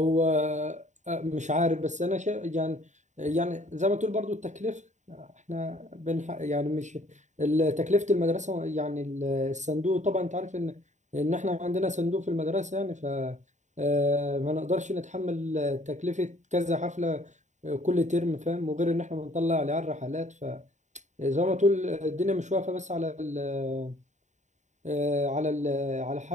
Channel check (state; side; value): late; left; 0.34 ms